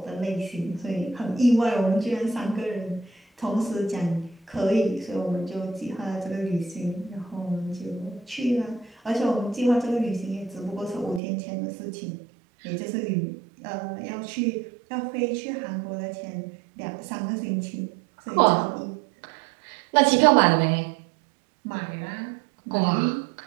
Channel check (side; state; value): left; drops out; at 11.2 s